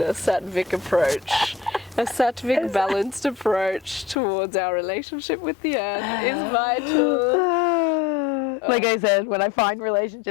sattvic approach. A sattvic balanced approach towards our relationship with the earth is vital. like I said, when I find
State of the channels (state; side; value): drops out; right; at 4.2 s